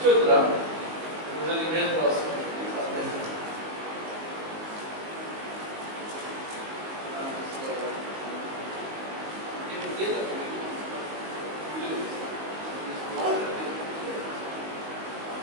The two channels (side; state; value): left; late; 19 ms